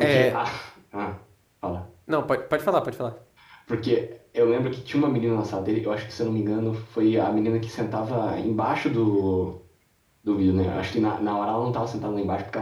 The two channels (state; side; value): identical; both; correlation 1.00